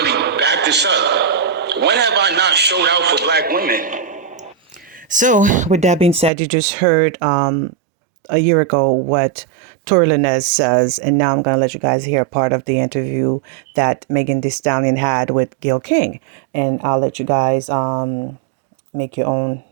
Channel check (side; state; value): left; drops out; at 6.3 s